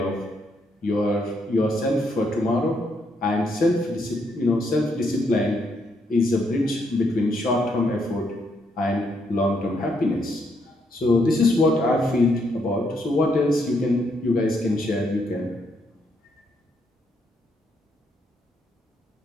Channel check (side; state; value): both; normal; correlation 0.75